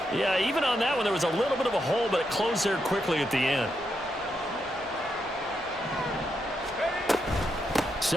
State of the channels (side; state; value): both; normal; correlation 0.82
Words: Yeah, even on that one, there was a little bit of a hole, but it closed there quickly at the end.